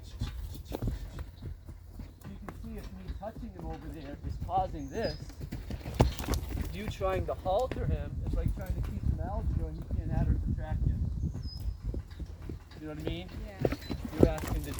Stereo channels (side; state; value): both; identical; correlation 1.00